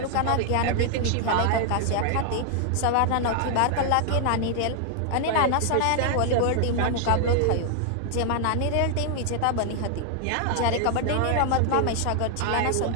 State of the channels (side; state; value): both; different; correlation 0.00